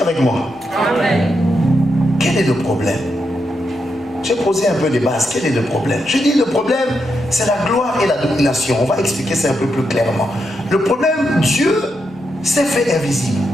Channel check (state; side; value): normal; both; correlation 0.83